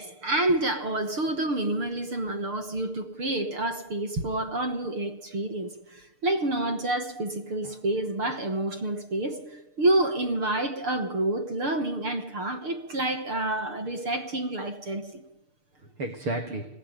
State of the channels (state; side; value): late; left; 6.7 ms